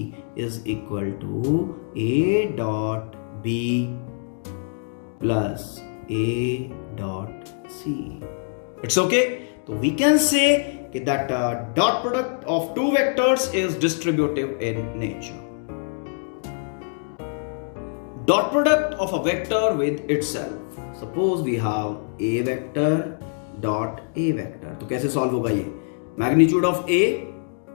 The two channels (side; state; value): right; silent; 62 dB below the other